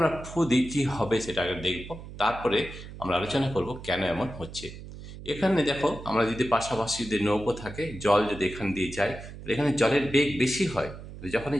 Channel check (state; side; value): noise; right; hum, 13 dB below the sound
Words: ফু দিই কী হবে সেটা আগে দেখব, তারপরে আমরা আলোচনা করব কেন এমন হচ্ছে। এখানে দেখো, আমরা যদি পাশাপাশি যদি নৌকো থাকে, জল যদি এখান দিয়ে যায়, তাহলে এখানে জলের বেগ বেশি হয়। তো